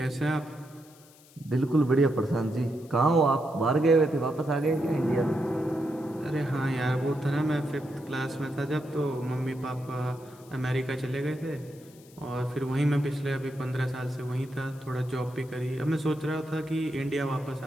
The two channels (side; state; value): left; noise; hiss, 25 dB below the sound